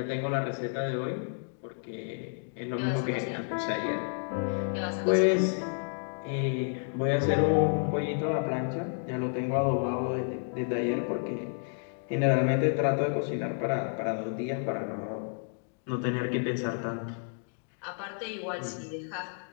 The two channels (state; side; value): silent; right; 57 dB below the other